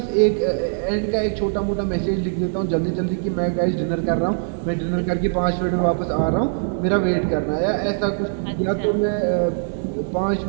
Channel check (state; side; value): silent; left; digital silence